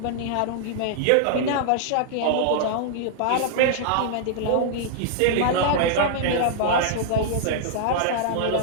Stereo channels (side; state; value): both; different; correlation -0.01